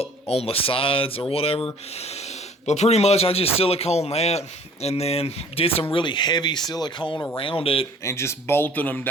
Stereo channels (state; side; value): normal; both; correlation 0.52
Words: on the sides or whatever. But pretty much I just silicone that and then did some really heavy silicone around it and just bolted them